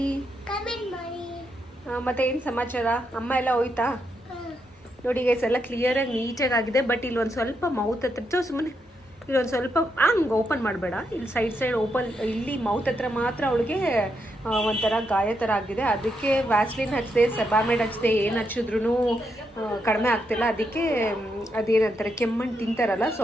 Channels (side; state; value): both; normal; correlation 0.81